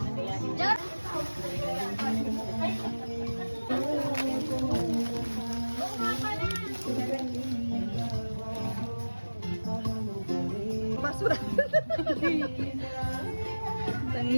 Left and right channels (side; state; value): both; inverted; correlation -1.00